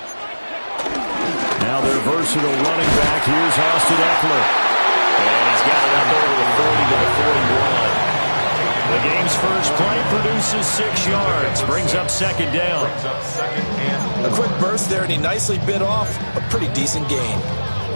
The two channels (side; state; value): both; inverted; correlation -1.00